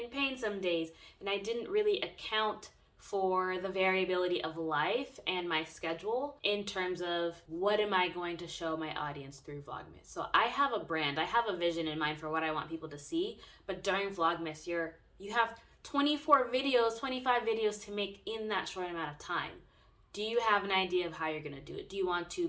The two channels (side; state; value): both; identical; correlation 1.00